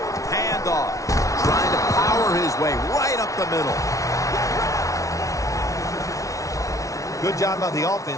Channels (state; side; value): late; right; 0.16 ms